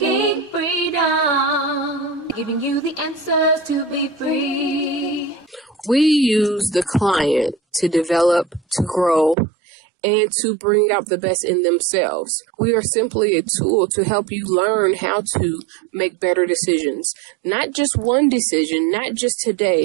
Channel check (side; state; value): left; drops out; at 9.3 s